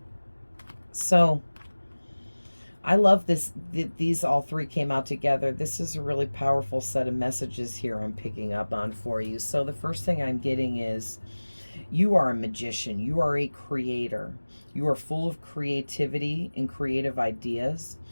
So I love this. These all three came out together. This is a really powerful set of messages here I'm picking up on for you. So the first thing I'm getting is you are a magician. You are a creator. You are full of creativity and creative ideas.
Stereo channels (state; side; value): inverted; both; correlation -1.00